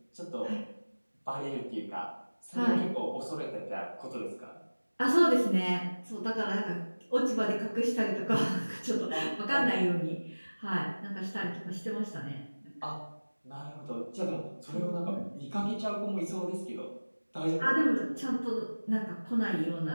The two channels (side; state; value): both; inverted; correlation -1.00